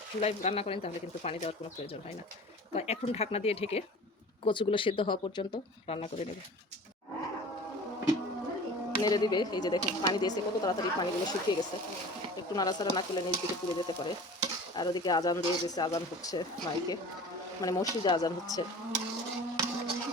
চুলায় রান্না করেন তাহলে কিন্তু পানি দেওয়ার কোনো প্রয়োজন হয় না। তো এখন ঢাকনা দিয়ে ঢেকে কচুগুলো সেদ্ধ হওয়া পর্যন্ত রান্না করে নেবে, নেড়ে দিবে। এই যে দেখুন পানি দিয়েছে, কত তাড়াতাড়ি পানিগুলো শুকিয়ে গেছে। একটু নাড়াচাড়া না করলে নিচ দিকে পুড়ে যেতে পারে। আর ওদিকে আজান দিয়ে দিয়েছে, আজান হচ্ছে মাইকে, মানে মসজিদে আজান হচ্ছে।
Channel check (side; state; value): both; normal; correlation 0.40